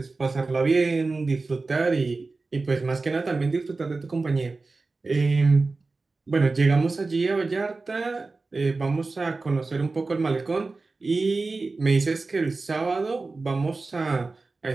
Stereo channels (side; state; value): left; quieter; 3.7 dB